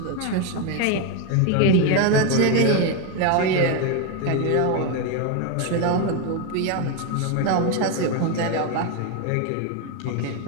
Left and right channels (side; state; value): both; different; correlation 0.02